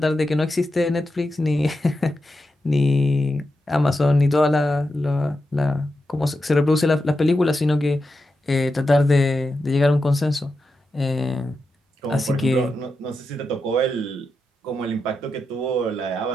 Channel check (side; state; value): both; normal; correlation 0.88